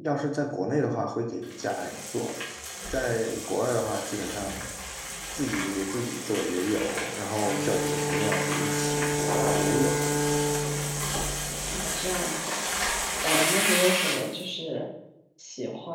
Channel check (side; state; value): both; identical; correlation 1.00